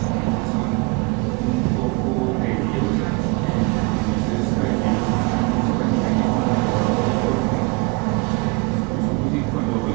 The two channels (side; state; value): left; quieter; 28.3 dB